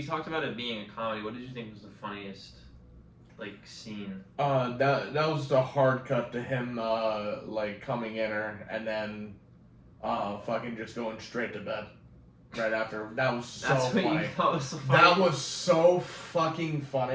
talked about it being a comedy. What did you think was the funniest scene? That was the hard cut to him coming in her and then fucking just going straight to bed right after. That was so funny. What you thought was so funny? That was so fucking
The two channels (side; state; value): both; identical; correlation 1.00